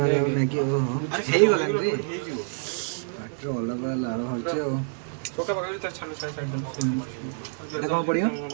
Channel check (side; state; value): left; silent; digital silence